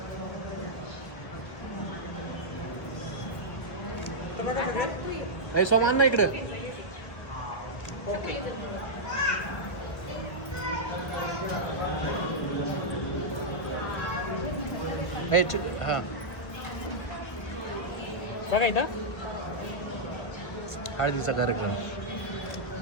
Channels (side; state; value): right; late; 1.2 ms